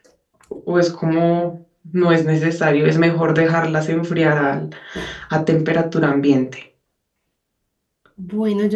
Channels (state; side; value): identical; both; correlation 1.00